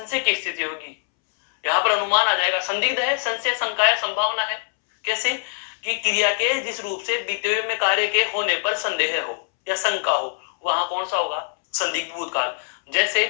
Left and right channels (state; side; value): silent; right; 63 dB below the other